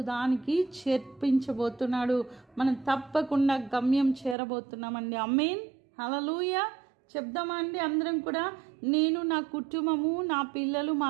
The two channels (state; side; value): drops out; left; at 4.4 s